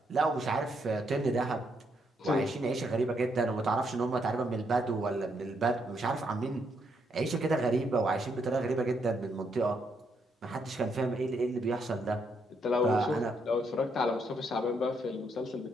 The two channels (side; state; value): both; normal; correlation 0.76